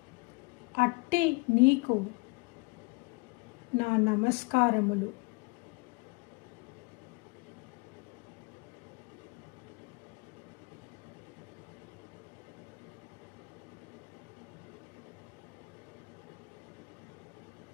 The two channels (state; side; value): quieter; right; 28.6 dB